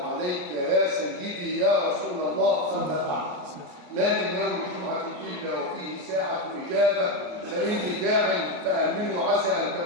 عليك يا سيدي يا رسول الله. أما بعد، ما من يوم الجمعة إلا وفيه ساعة إجابة، فإني داع فأمنوا عسى أن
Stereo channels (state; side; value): late; left; 34 ms